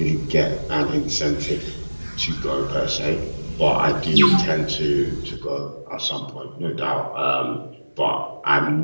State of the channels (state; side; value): inverted; both; correlation -1.00